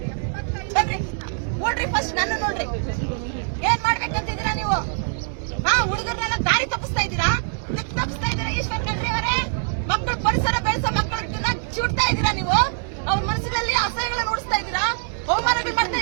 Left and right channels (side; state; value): left; silent; digital silence